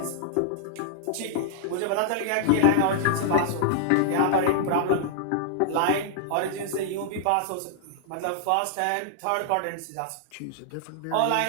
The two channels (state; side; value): different; both; correlation -0.01